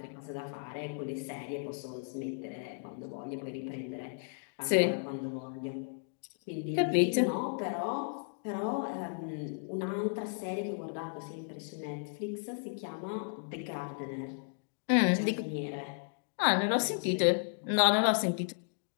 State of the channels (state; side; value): silent; right; digital silence